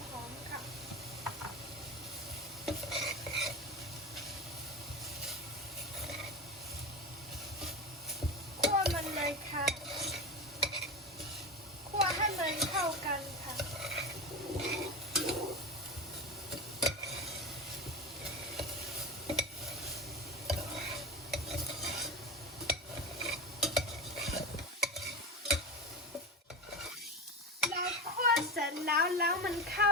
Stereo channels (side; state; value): both; normal; correlation 0.23